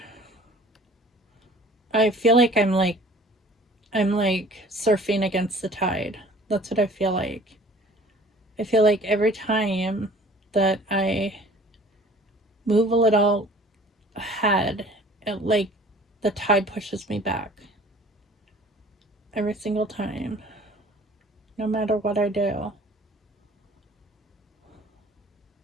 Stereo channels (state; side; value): normal; both; correlation 0.49